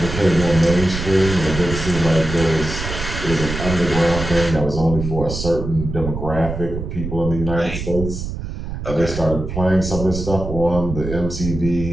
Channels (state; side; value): noise; right; rumble, 6 dB below the sound